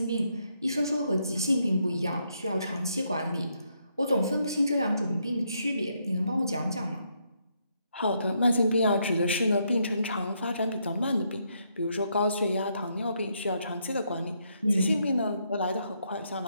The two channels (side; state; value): both; inverted; correlation -0.76